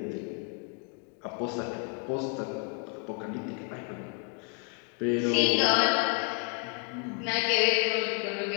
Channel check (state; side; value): quieter; right; 35.7 dB